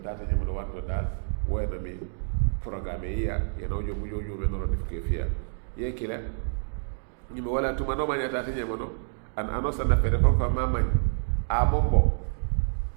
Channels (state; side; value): silent; left; digital silence